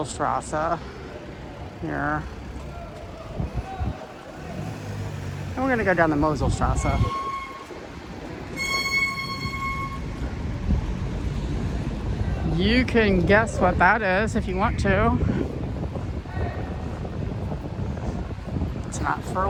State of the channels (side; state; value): both; identical; correlation 1.00